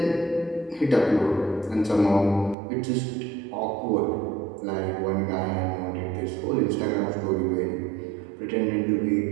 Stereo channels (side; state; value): left; drops out; at 2.6 s